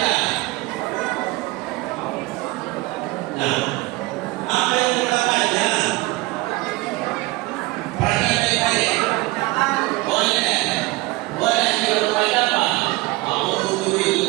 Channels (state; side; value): quieter; left; 21.1 dB